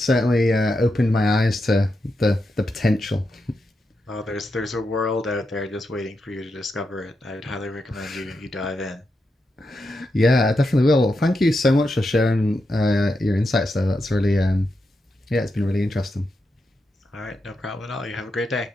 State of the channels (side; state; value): both; normal; correlation 0.86